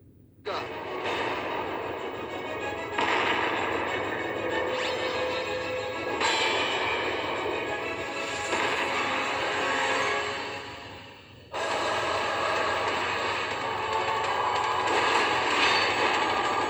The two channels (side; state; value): both; identical; correlation 1.00